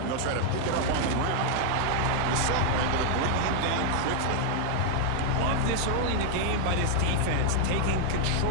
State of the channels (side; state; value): both; different; correlation 0.00